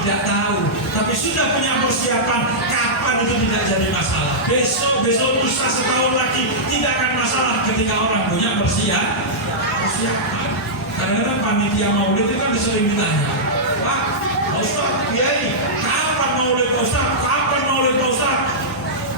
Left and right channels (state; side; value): normal; both; correlation -0.12